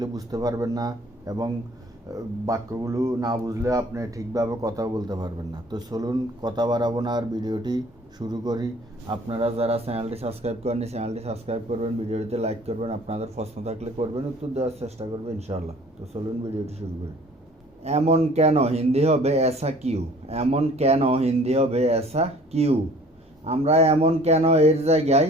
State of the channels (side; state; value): both; normal; correlation 0.52